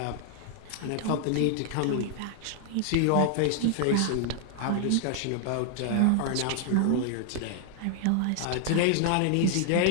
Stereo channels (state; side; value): different; both; correlation 0.00